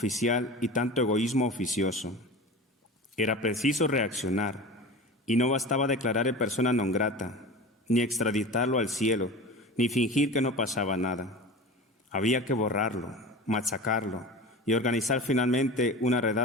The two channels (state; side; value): normal; both; correlation 0.33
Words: y tanto egoísmo oficioso. Era preciso reaccionar, y no bastaba declarar en persona non grata, ni extraditarlo al cielo, ni fingir que no pasaba nada. Había que borrarlo, machacarlo y organizar finalmente una